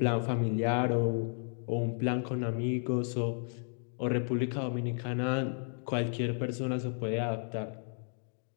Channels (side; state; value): right; silent; 56 dB below the other